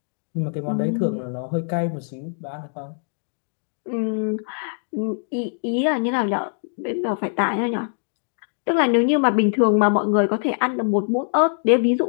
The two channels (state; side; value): silent; right; 63 dB below the other